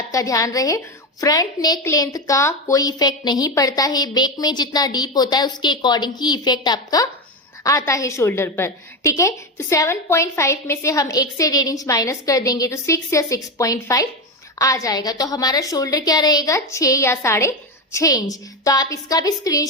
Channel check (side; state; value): both; normal; correlation 0.15